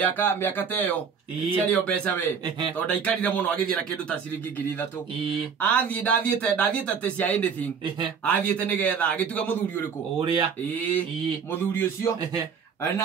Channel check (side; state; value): left; quieter; 6.4 dB